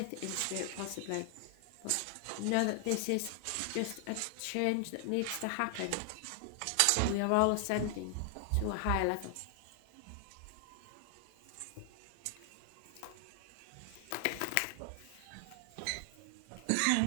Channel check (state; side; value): different; both; correlation 0.00